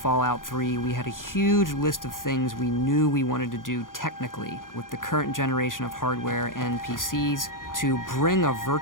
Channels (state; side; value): late; right; 0.90 ms